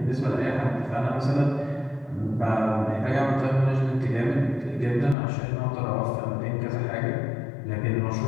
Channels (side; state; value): right; drops out; at 5.2 s